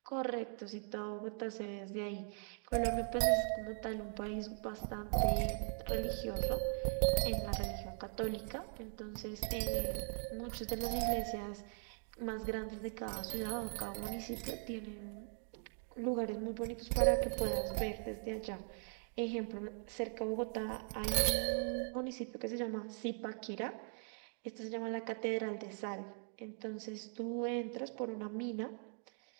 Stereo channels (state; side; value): silent; left; 51 dB below the other